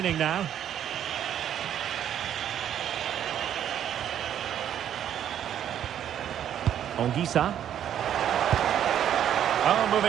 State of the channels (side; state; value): left; quieter; 10.1 dB